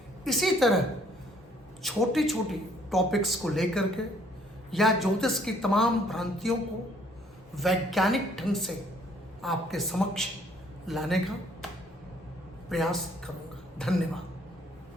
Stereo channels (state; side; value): normal; both; correlation 0.63